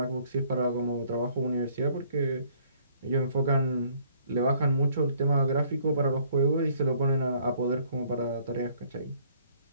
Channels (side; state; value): both; inverted; correlation -0.62